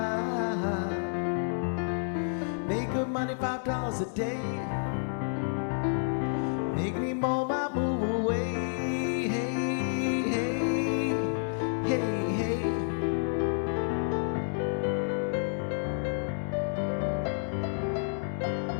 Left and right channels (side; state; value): right; silent; digital silence